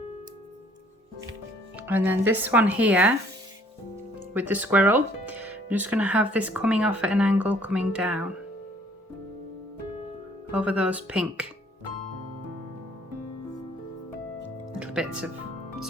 And then this one here with the squirrel, I'm just going to have this coming off at an angle, coming down over those pink little bits of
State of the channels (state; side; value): normal; both; correlation 0.59